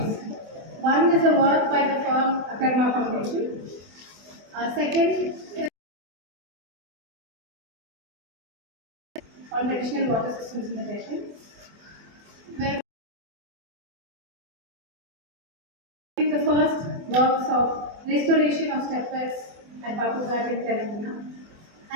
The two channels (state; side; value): late; left; 24 ms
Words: One is a work by the firm Akarma Foundation. Second is on traditional water systems in the nation, where the first works of restoration of stepwells at Babughat in Telangana,